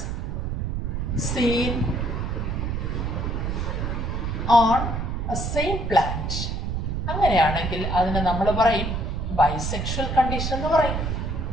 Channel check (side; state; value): right; noise; rumble, 1 dB below the sound